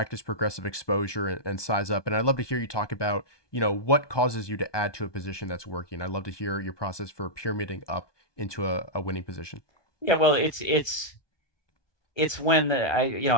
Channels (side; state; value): right; late; 1.2 ms